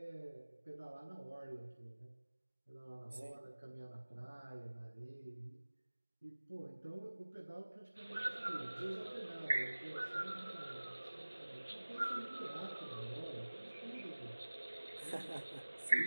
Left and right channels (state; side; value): inverted; both; correlation -1.00